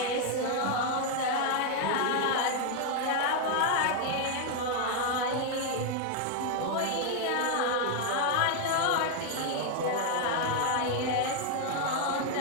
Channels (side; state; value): both; different; correlation 0.00